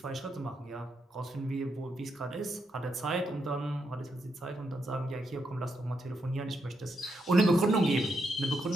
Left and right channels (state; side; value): normal; both; correlation 0.81